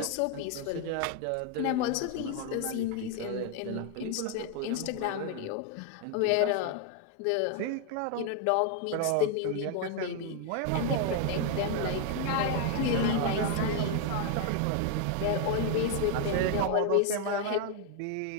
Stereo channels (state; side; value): different; both; correlation 0.01